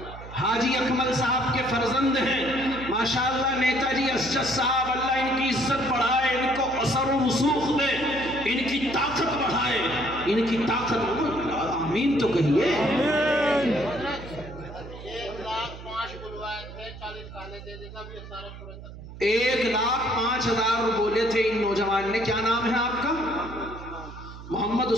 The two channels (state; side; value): noise; right; hum, 14 dB below the sound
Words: हाजी अकमल साहब के फर्जंद हैं माशाअल्लाह। नेताजी असजद साहब, अल्लाह इनकी इज्जत बढ़ाए, इनको असर व रसूख दे, इनकी ताकत बढ़ाए, इनकी ताकत। आमीन तो कहिए। 1,05,000 बोले थे इन नौजवान ने। क्या नाम है आपका? मोहम्मद